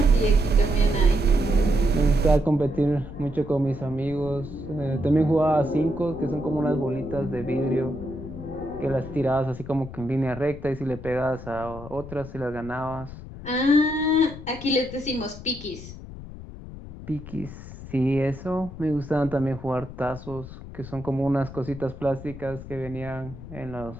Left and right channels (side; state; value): left; noise; rumble, 13 dB below the sound